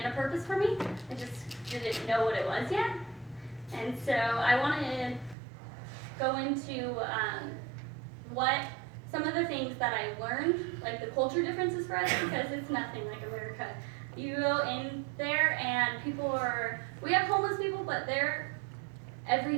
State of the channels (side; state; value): left; drops out; at 5.4 s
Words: a purpose for me, I just didn't know what it was yet. And so I want to go into what some of the things that I learned, like the culture differences for us, because it's nothing like America. You go in there and we have homeless people, but their